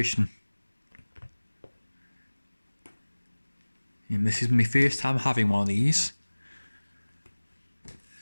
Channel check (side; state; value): both; inverted; correlation -1.00